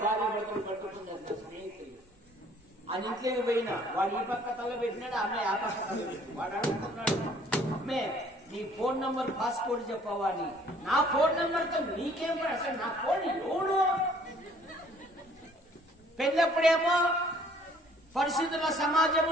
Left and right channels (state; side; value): normal; both; correlation 0.58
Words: భార్య భర్తలు పట్టుకున్నారు నా స్నేహితులు. ఆ ఇంట్లోకి పోయినా వాడు ఈ పక్క తల పెట్టినాడు, అమ్మాయి ఆ పక్క తల పెట్టి వాడు అడుగుతున్నాడు, అమ్మే నీ ఫోన్ నంబర్ పాస్పోర్ట్ చెప్పవాలి. నా ఫోన్ నంబర్తో నీకేం అసలు నా ఫోన్ ఎవడు? పెళ్ళప్పుడేమో పరిశుద్ధుల